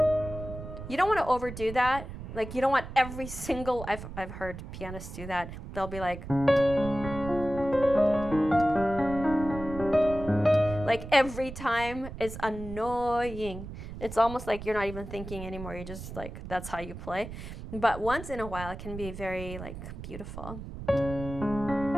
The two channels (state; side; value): noise; right; rumble, 10 dB below the sound